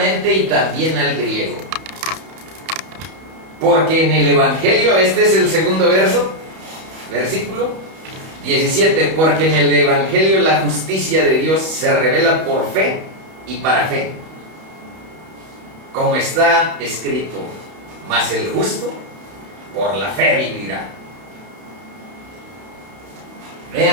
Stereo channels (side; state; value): left; late; 31 ms